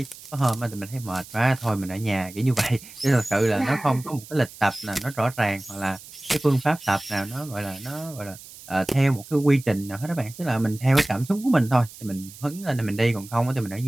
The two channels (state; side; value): noise; right; hiss, 18 dB below the sound